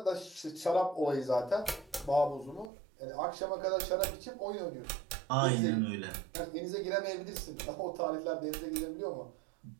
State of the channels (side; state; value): left; drops out; at 2.7 s